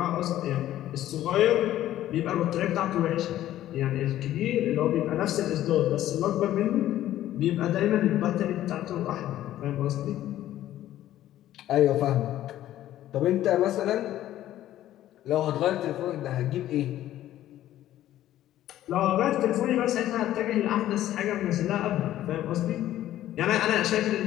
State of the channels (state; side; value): quieter; right; 13.2 dB